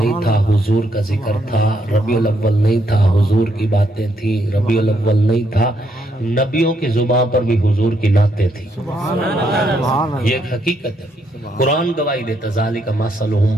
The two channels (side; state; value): both; normal; correlation 0.75